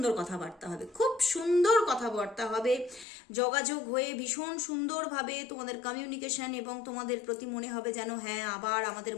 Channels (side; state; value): right; drops out; at 3.1 s